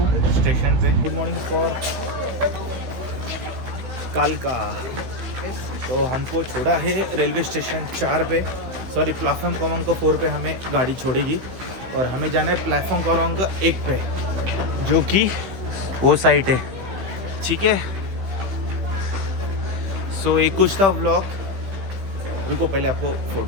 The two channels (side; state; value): left; late; 16 ms